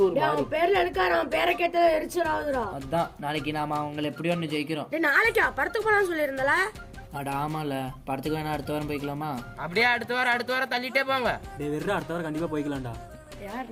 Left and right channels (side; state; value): both; identical; correlation 1.00